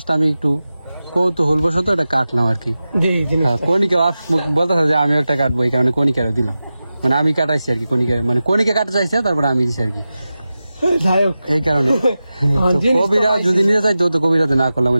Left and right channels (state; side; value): inverted; both; correlation -0.94